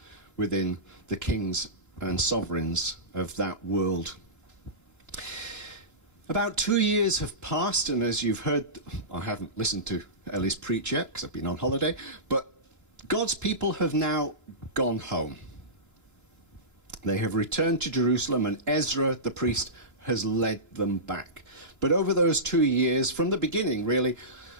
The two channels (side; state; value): left; late; 2.9 ms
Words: within the kings and sovereigns of that world. About 2 years have passed, and as you've heard, I haven't listened to Ellie's preach yet because I've been on holiday, but God's people have now gone home. They have returned to Jerusalem, and Ezra the priest has led them back. But over those 2 years, from the beginning really,